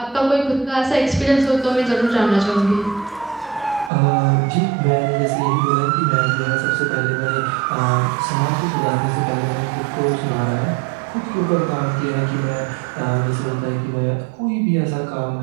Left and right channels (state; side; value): drops out; left; at 3.9 s